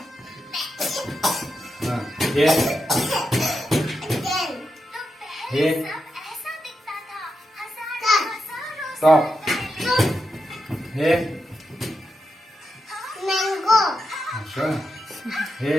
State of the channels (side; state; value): both; normal; correlation 0.86